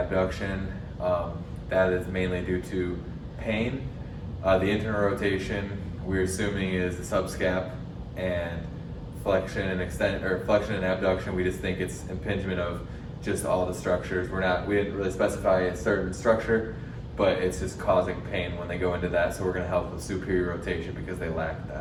That is mainly due to pain. The internal rotation we're assuming is the subscap, and flexion and abduction, we just think it's impingement of just all the structures. We didn't really specify a certain structure, but it's just causing pain when they go into that. So we're going to help with superior rotation because they lack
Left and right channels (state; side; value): identical; both; correlation 1.00